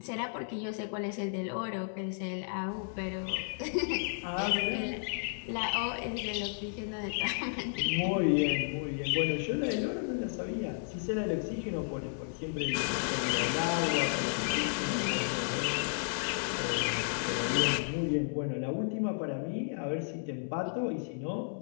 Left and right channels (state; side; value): silent; right; 56 dB below the other